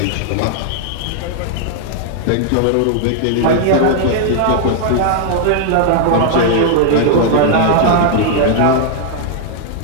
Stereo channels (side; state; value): both; different; correlation 0.00